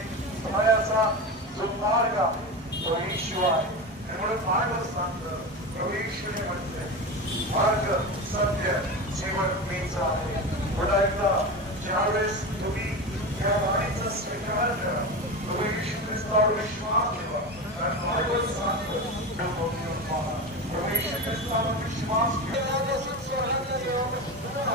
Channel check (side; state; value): both; normal; correlation 0.23